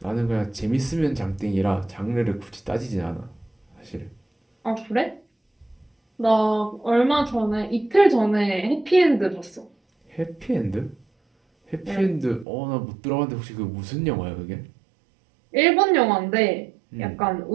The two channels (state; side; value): drops out; left; at 12.5 s